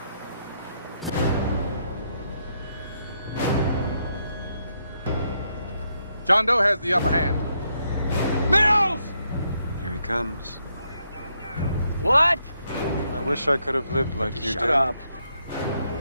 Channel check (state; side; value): inverted; both; correlation -0.78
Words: John Doe has the upper hand. Mills! Here he comes. What? I wish I could have lived like you did. Shut up.